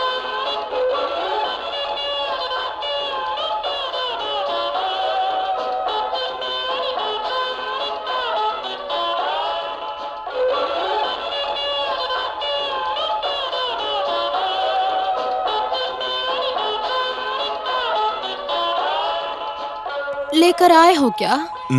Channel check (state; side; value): identical; both; correlation 1.00